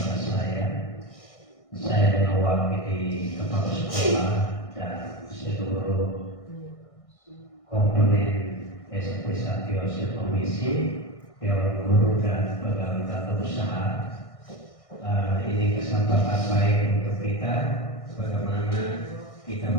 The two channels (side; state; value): right; late; 1.6 ms